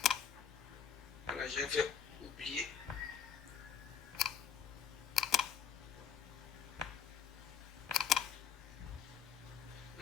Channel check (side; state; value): right; quieter; 7.8 dB